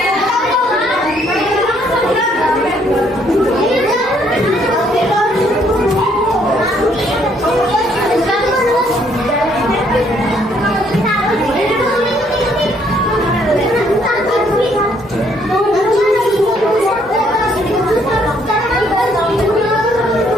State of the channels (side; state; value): both; normal; correlation 0.67